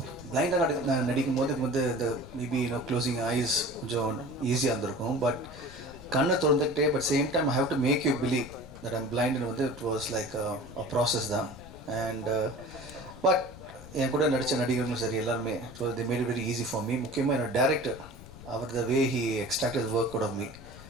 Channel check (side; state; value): left; noise; rumble, 16 dB below the sound